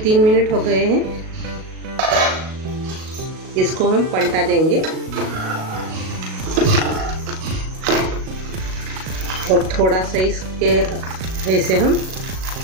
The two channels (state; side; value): late; left; 37 ms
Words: मिनट हो गए हैं, इसको हम पलटा देंगे और थोड़ा सा इसके ऐसे हम